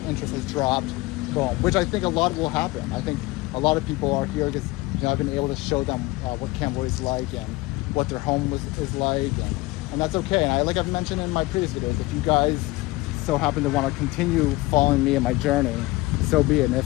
interest has dropped, boom. Which I think a lot will happen. I think a lot of people are here because I've been able to show them what Cambodia is like and what their home is like, and that's okay. And like I've mentioned in my previous videos, if you guys so happen to want to continue following me in my journey, so be it. And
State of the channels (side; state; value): right; quieter; 20.8 dB